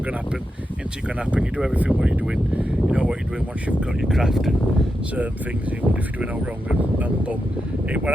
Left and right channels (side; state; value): both; normal; correlation 0.87